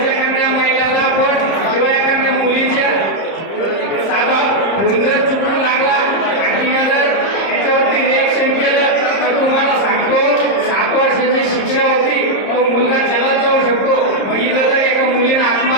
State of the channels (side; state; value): right; late; 30 ms